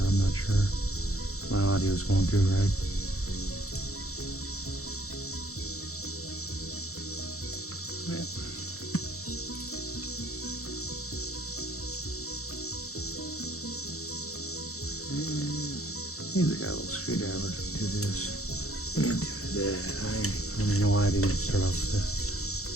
I'm not sure. My audio's going through right. Yeah. Usually got a little screwdriver to do this. And do that. I don't even know why I didn't start off with a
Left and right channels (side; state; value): right; late; 0.64 ms